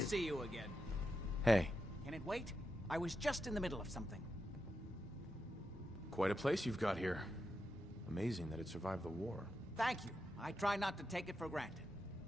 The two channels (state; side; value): normal; both; correlation 0.87